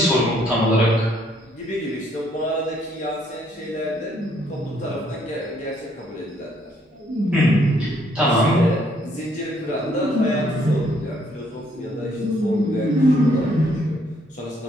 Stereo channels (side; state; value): both; normal; correlation 0.68